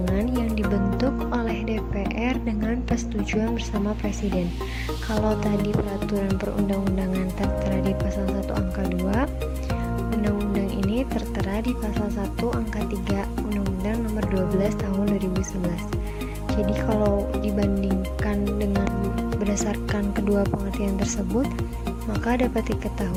yang dibentuk oleh DPR dengan persetujuan bersama Presiden. Kalau tadi peraturan perundang-undangan tertera di pasal 1 angka 2, undang-undang ini tertera di pasal 1 angka 3 Undang-Undang Nomor 12 Tahun 2011. Jadi kalau dibandingkan dengan berdasarkan kedua pengertian tersebut, maka dapat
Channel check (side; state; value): both; identical; correlation 1.00